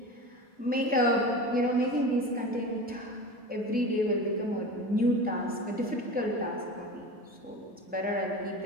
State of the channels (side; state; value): both; normal; correlation 0.31